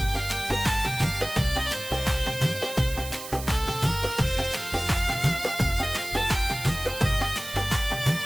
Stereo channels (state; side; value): noise; right; hiss, 11 dB below the sound